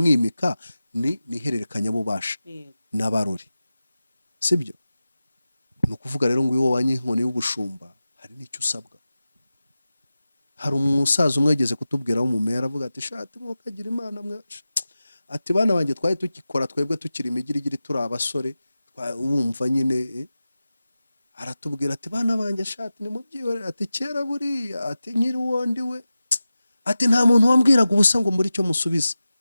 ni ihererekanya bubasha n'abarori, sibyo? Ni ukuvuga rero ngo iyo wanye inkoni y'ubushumba hari n'icyo usabwa. Hari umusaza umwe yageze kutubwira w'umumeya, aravuga ati shati mukagira imana mwe, ati bana banjye twari tukikora twebwe tukiri imigirigiri turi abasore, wumva nyine aratubwira ati bana banjye shati ni mubyihorere, ati kera buriya, ati nkiri wondi we, ati nta muntu wambwiraga ubusa ngo muri cyo musubiza.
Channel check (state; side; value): inverted; both; correlation -0.94